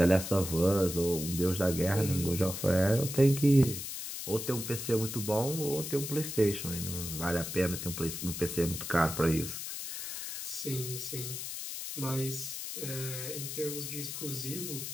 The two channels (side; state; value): left; noise; hiss, 6 dB below the sound